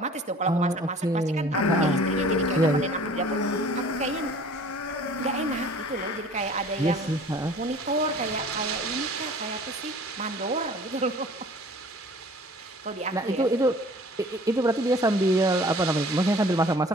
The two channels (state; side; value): normal; both; correlation 0.48